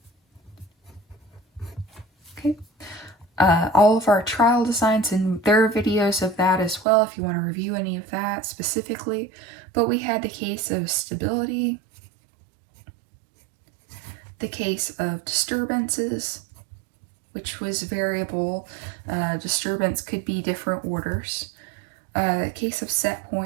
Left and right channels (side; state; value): left; drops out; at 6.9 s